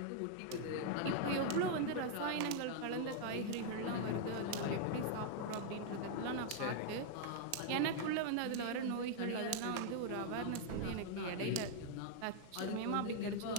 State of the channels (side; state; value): both; different; correlation -0.01